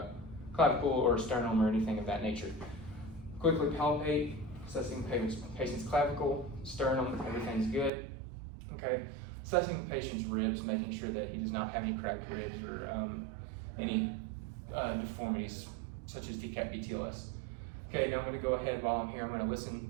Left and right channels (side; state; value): left; drops out; at 7.9 s